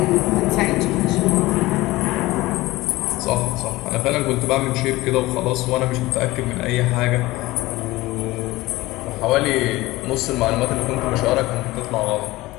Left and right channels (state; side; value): quieter; right; 19.1 dB